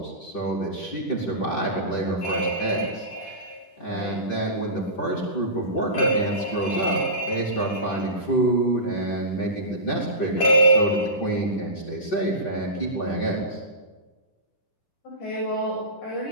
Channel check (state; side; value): late; right; 10 ms